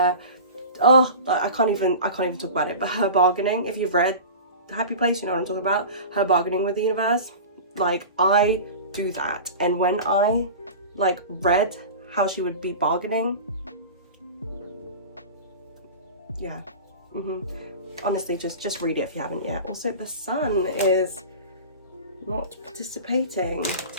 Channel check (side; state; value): both; inverted; correlation -0.34